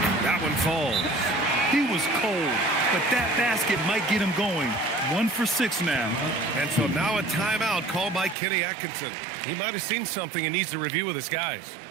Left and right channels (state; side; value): drops out; left; at 8.3 s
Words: that one falls. He was cold, but that basket might get him going. 1 for 6 now. And so now a timeout called by Kenny Atkinson. He might have seen something and needs to review with his guys.